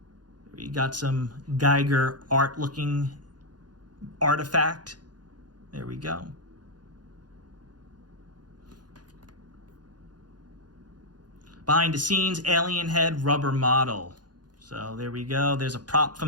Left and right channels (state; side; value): late; left; 0.69 ms